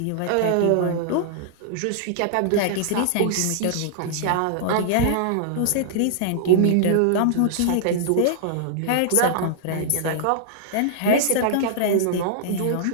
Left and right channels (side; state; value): both; different; correlation -0.01